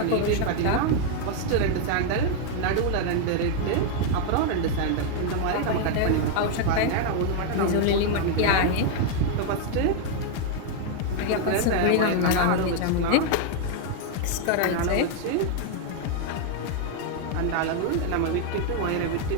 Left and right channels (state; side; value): different; both; correlation 0.00